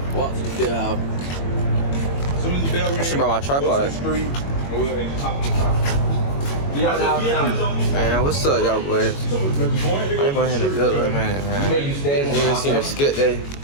Walk to the bell. As soon as the bell ring, I should bring my tripod. Man, what's up, y'all boys? I ain't going in the good one, man. You ain't seen a skit day.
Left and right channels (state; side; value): late; right; 21 ms